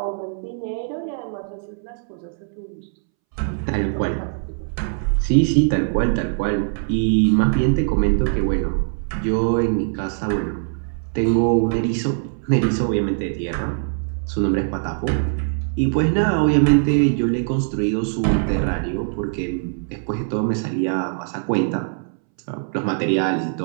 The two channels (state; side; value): silent; left; 64 dB below the other